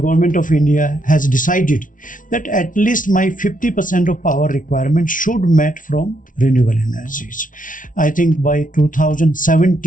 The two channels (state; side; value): late; right; 0.38 ms